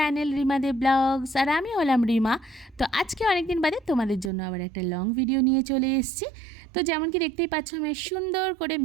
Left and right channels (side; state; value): left; drops out; at 4.3 s